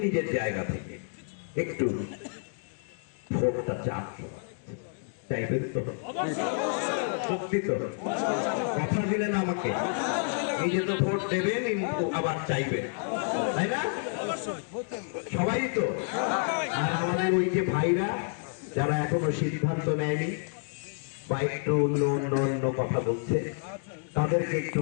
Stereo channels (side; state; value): right; silent; 58 dB below the other